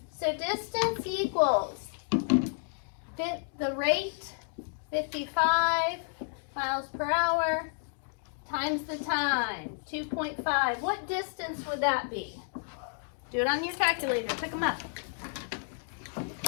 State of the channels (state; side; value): silent; right; digital silence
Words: So distance equals the rate, 55 miles per hour, times the time, 2.5. What distance would that be? Do it on your calculator. Pick them up.